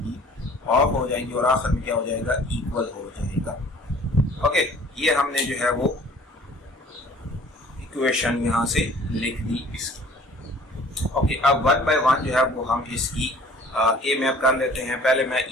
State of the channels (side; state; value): both; normal; correlation 0.51